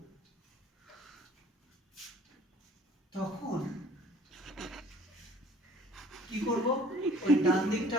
তখন কি করব ওই ডান দিকটা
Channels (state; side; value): normal; both; correlation 0.53